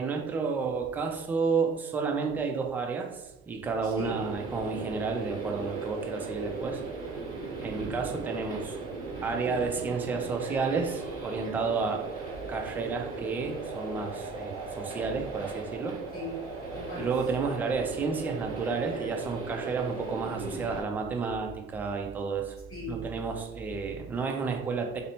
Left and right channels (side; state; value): left; quieter; 4.3 dB